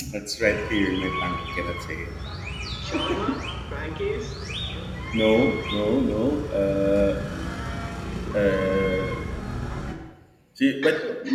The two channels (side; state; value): both; identical; correlation 1.00